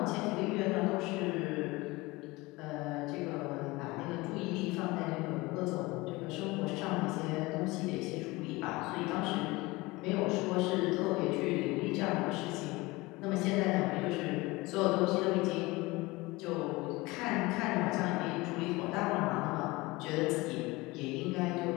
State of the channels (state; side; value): quieter; right; 22.1 dB